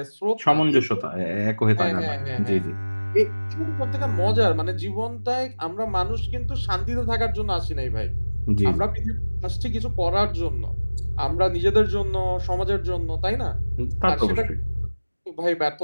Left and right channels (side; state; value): both; inverted; correlation -1.00